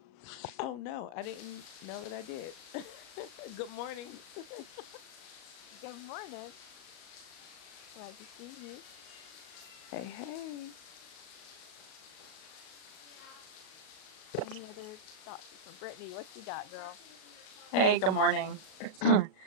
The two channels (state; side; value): late; right; 38 ms